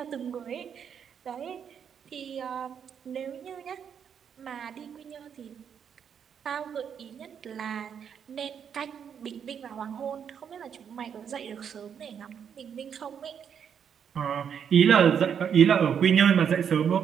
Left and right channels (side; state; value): left; quieter; 7.8 dB